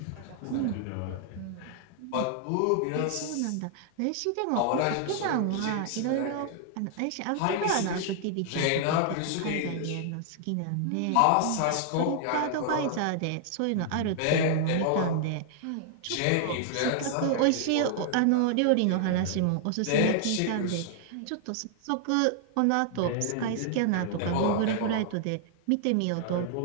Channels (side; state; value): both; different; correlation -0.01